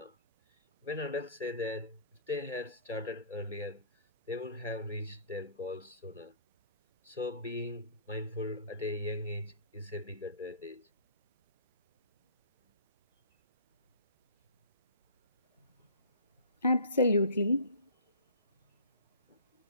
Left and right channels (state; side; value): inverted; both; correlation -0.45